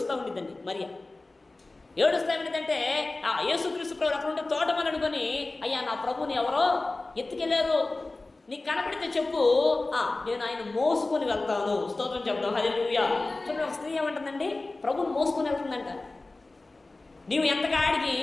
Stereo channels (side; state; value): right; quieter; 3.2 dB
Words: ఉండిద్దండి మరియా. ఏడుస్తా ఏమిటంటే యేసుక్రీస్తు ప్రభు అక్కడ ఉంటే తోటమని అనుకొని, అయ్యా నా ప్రభుని ఎవరో ఎత్తుకెళ్ళారు, నీకు కనపడితే చెప్పు, నేను ఆయన మోసుకొని వెళ్తాను. స్తోత్రం చెప్తాం. హల్లెలూయా. చూడండి, ఒక స్త్రీ ఏమంటుందండి? ప్రభుని మోసుకొని వెళ్తుందంట. నీవు ఎంతకాడికి